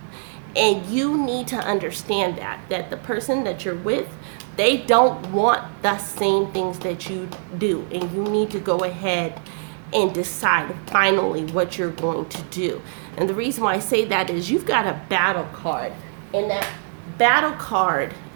and you need to understand that the person that you're with, they don't want the same things that you do, and you need to go ahead and decide finally what you're going to do. And the reason why I say that is you've got a battle card, and that battle card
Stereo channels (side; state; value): left; silent; digital silence